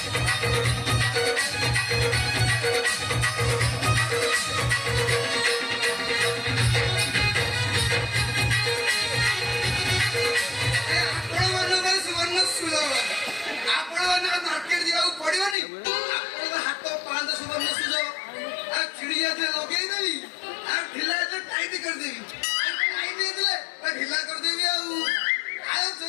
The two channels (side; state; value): right; drops out; at 15.6 s